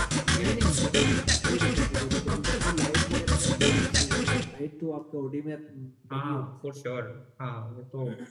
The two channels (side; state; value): both; identical; correlation 1.00